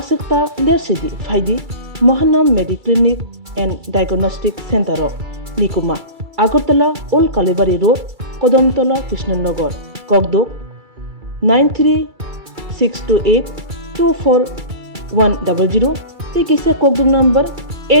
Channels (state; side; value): late; left; 2.3 ms